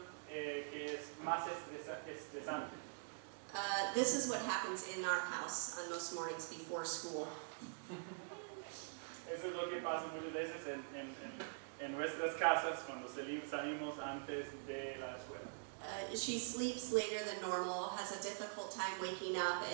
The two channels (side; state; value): left; silent; digital silence